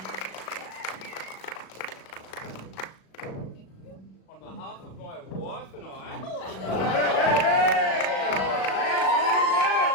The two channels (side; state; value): right; late; 37 ms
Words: On behalf of my wife and I,